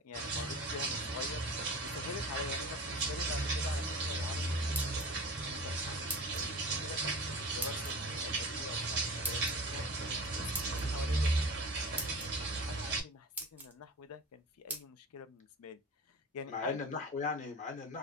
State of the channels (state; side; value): normal; both; correlation 0.35